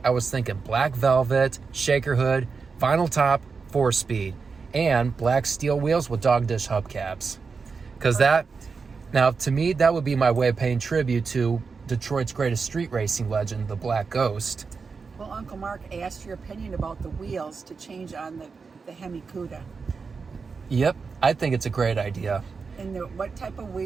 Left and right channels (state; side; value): quieter; left; 5.0 dB